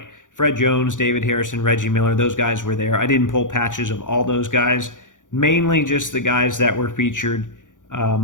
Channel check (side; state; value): right; late; 0.87 ms